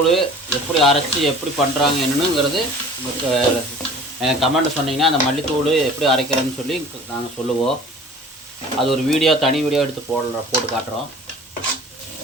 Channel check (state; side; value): normal; both; correlation 0.45